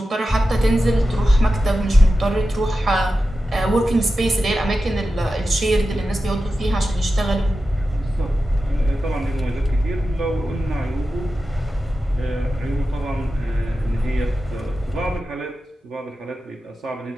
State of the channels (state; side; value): normal; both; correlation 0.92